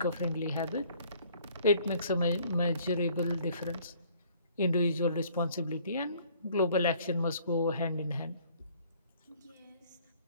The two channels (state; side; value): inverted; both; correlation -0.58